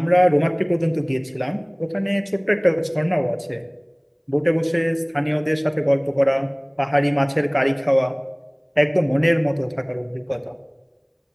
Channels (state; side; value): identical; both; correlation 1.00